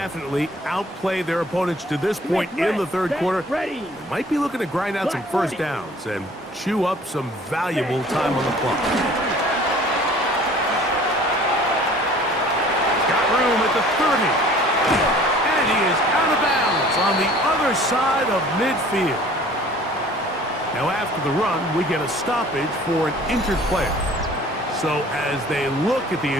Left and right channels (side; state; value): both; normal; correlation 0.50